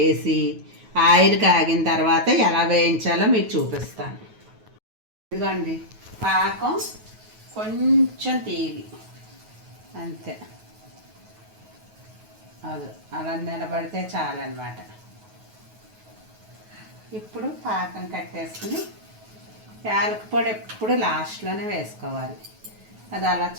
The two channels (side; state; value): left; late; 9.3 ms